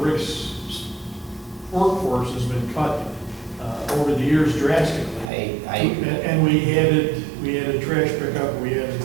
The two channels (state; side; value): drops out; left; at 5.3 s